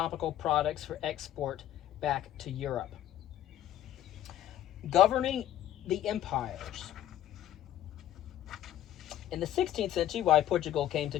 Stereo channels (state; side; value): quieter; right; 12.2 dB